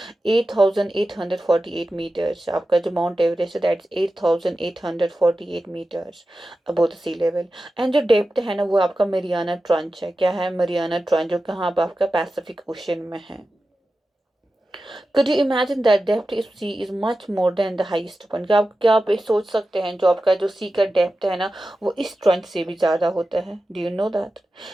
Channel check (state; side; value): normal; both; correlation 0.93